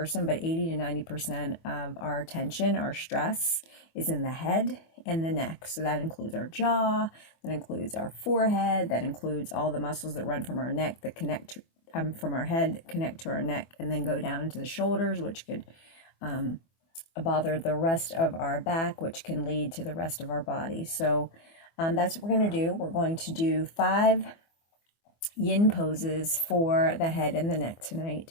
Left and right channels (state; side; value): late; right; 24 ms